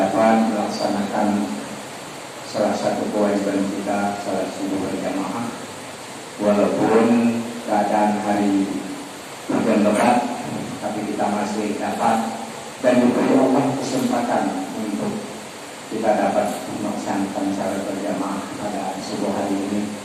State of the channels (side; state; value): both; identical; correlation 1.00